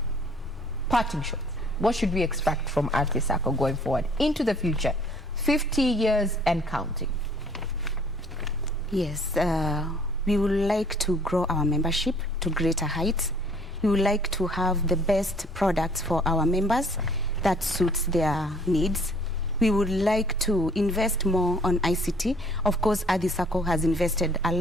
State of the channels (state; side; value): normal; both; correlation 0.57